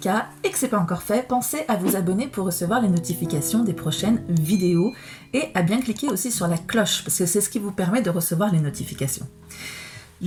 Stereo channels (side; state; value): both; identical; correlation 1.00